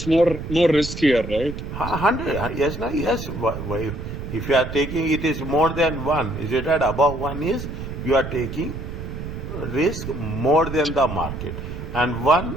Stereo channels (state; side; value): noise; right; rumble, 8 dB below the sound